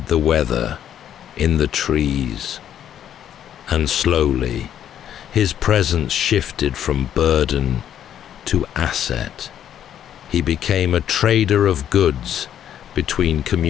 the weather in the trees. And slowly, his presence shifted from burden to asset. He became a trader of goods between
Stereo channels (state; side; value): quieter; right; 10.1 dB